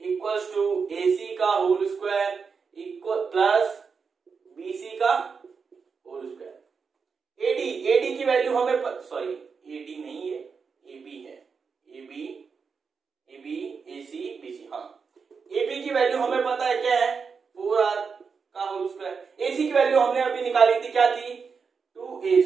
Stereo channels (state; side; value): quieter; left; 5.5 dB